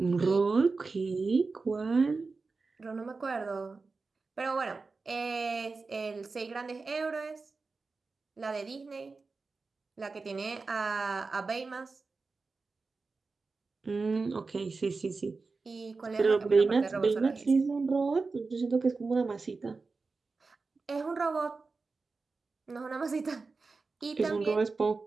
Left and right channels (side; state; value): left; quieter; 4.1 dB